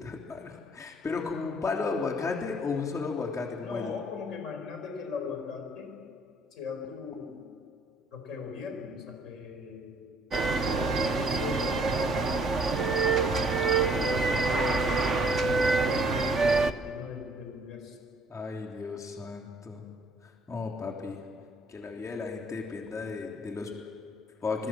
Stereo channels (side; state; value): both; normal; correlation 0.61